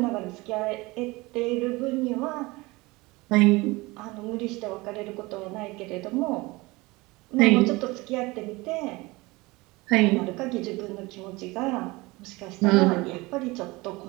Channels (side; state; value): left; quieter; 22.7 dB